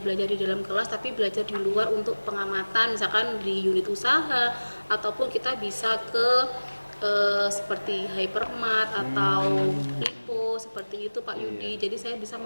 di dalam kelas, tapi belajar di luar untuk pengamatan, misalkan di unit usaha, ataupun kita bisa ke seperti Hypermart atau Lipo, seperti itu Pak Yudi. Jadi saya bisa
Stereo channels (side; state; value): both; inverted; correlation -1.00